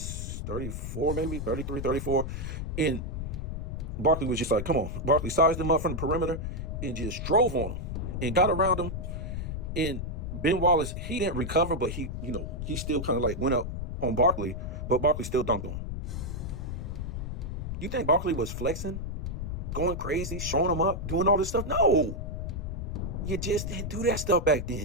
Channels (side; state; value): left; noise; rumble, 5 dB below the sound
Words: 34, maybe 33, 34. And Barkley was just like, come on. Barkley sized him up from the perimeter and just drove on him and got around him. And Ben Wallace, he didn't recover, but he still kind of like went up on Barkley, but Barkley still dunked on him. You think Barkley was flexing, going crazy, showing him up, doing all this stuff? No. You just didn't do that stuff back